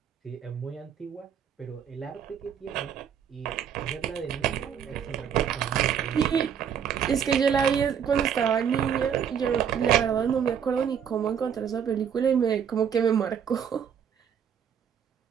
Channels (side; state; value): left; quieter; 8.0 dB